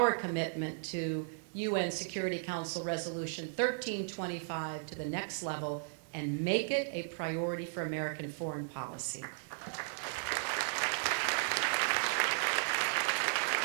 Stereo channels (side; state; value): left; silent; digital silence